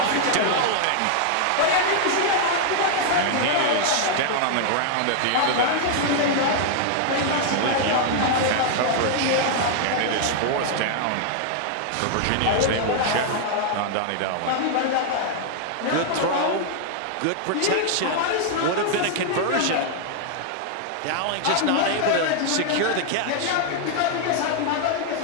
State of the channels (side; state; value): both; different; correlation 0.00